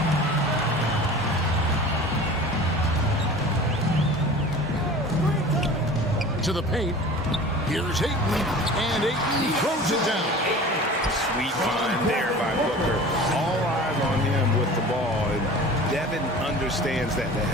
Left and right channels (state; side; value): normal; both; correlation 0.40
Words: To the paint. Here's Ayton, and Ayton throws it down. Sweet find there by Booker. All eyes on him with the ball, and Devin understands that. That